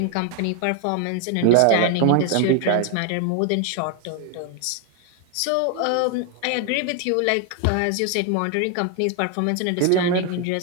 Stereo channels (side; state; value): both; different; correlation 0.01